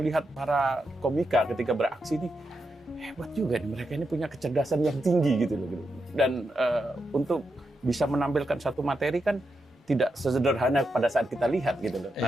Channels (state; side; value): normal; both; correlation 0.85